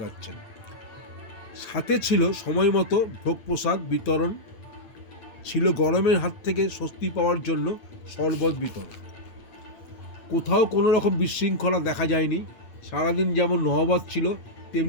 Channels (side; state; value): right; late; 8.8 ms